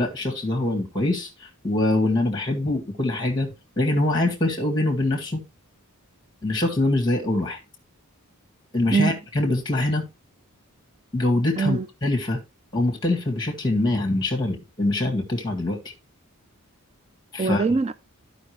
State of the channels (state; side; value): normal; both; correlation 0.74